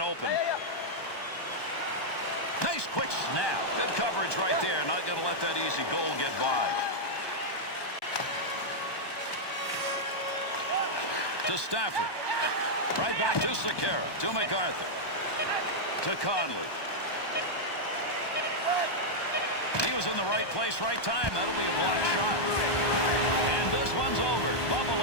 Nice quick snap. Good coverage right there. Not going to let that easy goal get by. To Stafford. Right back to Sekera. To MacArthur. To Conley. He was in the right place, right time. That'll be a block shot. And this one's over.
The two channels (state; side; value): late; right; 1.2 ms